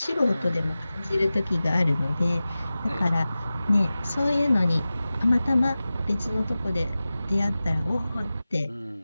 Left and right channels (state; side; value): inverted; both; correlation -0.96